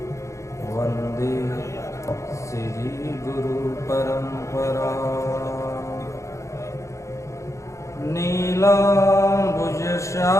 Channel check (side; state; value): right; late; 0.15 ms